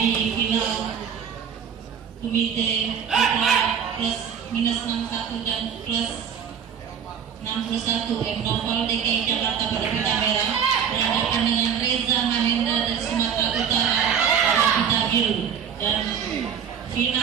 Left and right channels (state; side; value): quieter; left; 7.7 dB